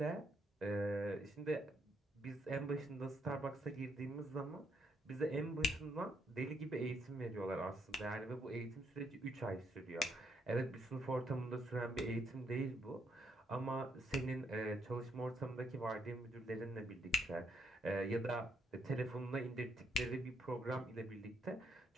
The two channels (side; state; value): both; normal; correlation 0.74